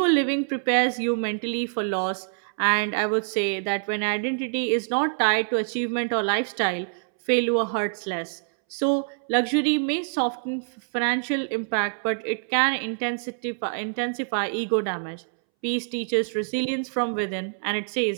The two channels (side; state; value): left; silent; 61 dB below the other